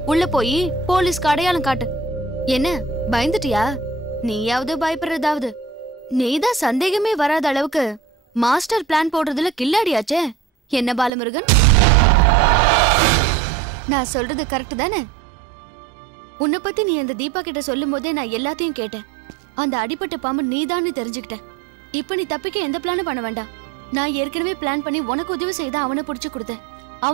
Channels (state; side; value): drops out; left; at 11.1 s